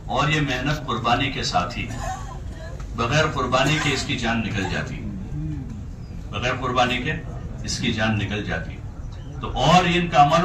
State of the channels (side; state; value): both; identical; correlation 1.00